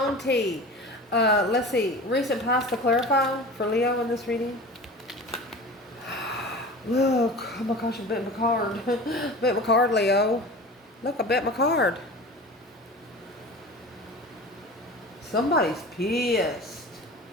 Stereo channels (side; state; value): both; normal; correlation 0.35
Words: tea. Let's see. Recent past to clarify for Leo in this reading. Look. Oh my gosh, I bet my card. Bet my card, Leo. Look, I bet my card. Somebody's pissed.